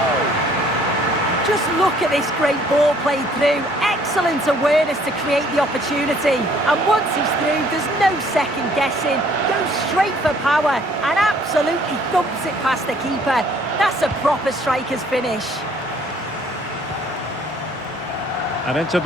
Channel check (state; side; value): normal; both; correlation 0.60